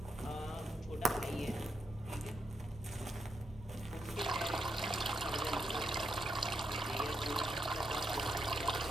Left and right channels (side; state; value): both; normal; correlation 0.81